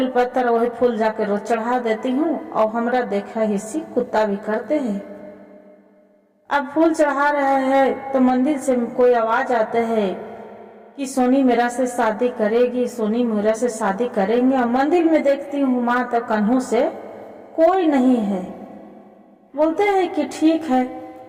वही फूल जाके रोज चढ़ा देती हूँ और हमरा देखा हिस्सी कुत्ता भी करते हैं। अब फूल चढ़ा रहे हैं तो मंदिर से कोई आवाज आते है कि सोनी मेरा से शादी करेगी, सोनी मेरा से शादी करेंगे। और मंदिर में देखती हूँ माँ तो कन्हू से कोई नहीं है। बोलते हैं कि ठीक है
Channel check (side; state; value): both; identical; correlation 1.00